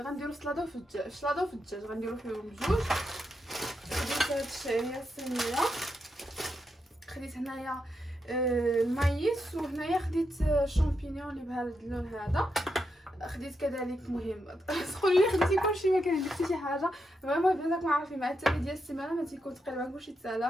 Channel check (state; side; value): normal; both; correlation 0.84